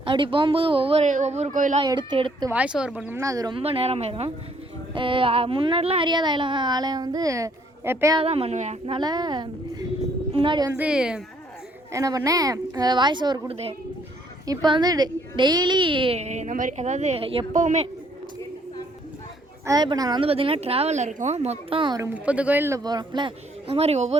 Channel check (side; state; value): both; normal; correlation 0.66